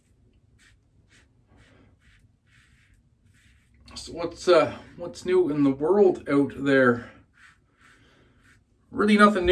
So what's new in the world out there? Really nothing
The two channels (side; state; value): both; identical; correlation 1.00